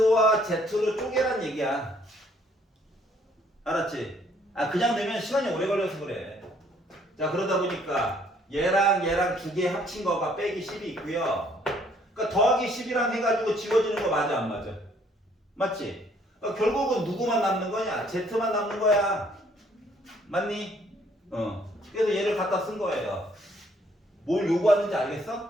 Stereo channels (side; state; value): both; normal; correlation 0.64